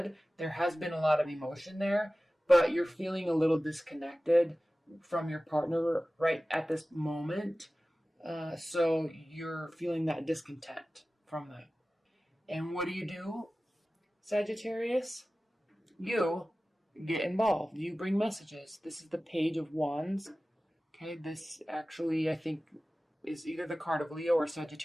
There has been a lot of emotion there, but you're feeling a little disconnected from your partner right at this moment. So you're feeling that discontent from that. And what do, Sagittarius? You get involved. You bring messages. This is the Page of Wands. Okay, this actually, I think, is either the card of Leo or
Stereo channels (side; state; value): both; normal; correlation 0.96